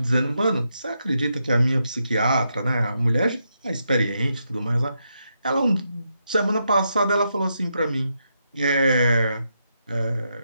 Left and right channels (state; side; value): inverted; both; correlation -0.83